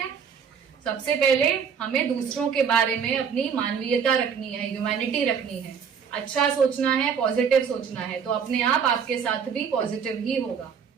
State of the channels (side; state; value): left; quieter; 6.9 dB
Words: सबसे पहले हमें दूसरों के बारे में अपनी मानवीयता रखनी है, ह्यूमैनिटी रखनी है, अच्छा सोचना है, पॉजिटिव सोचना है, तो अपने आप आपके साथ भी पॉजिटिव ही होगा।